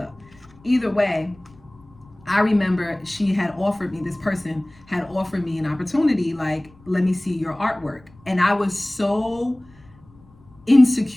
Either way, I remember this person had offered me an opportunity, like, let me see your artwork. And I was so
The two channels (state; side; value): noise; left; rumble, 27 dB below the sound